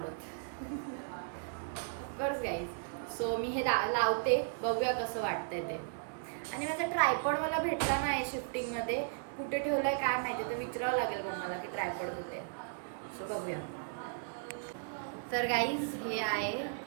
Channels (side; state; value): left; silent; digital silence